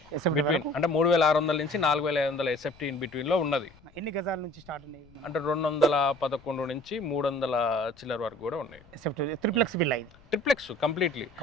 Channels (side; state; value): left; noise; rumble, 26 dB below the sound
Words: బిట్వీన్, అంటే 3,600 నుంచి 4,500 SFT ఇన్ బిట్వీన్లో ఉన్నది. ఎన్ని గజాల నుంచి స్టార్ట్ ఉన్నాయి అంటే 211 నుంచి 300 చిల్లర వరకు కూడా ఉన్నాయి. Triplex villa, triplex completely.